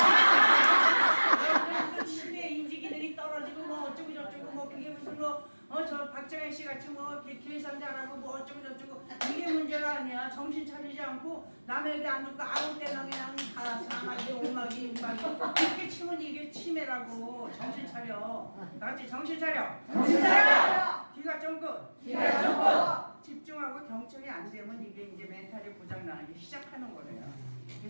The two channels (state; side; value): inverted; both; correlation -1.00